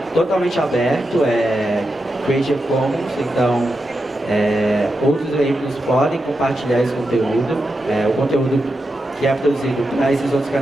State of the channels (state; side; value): normal; both; correlation 0.88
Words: totalmente aberto, é Creative Commons, então outros veículos podem compartilhar esse conteúdo. O conteúdo que é produzido para esses outros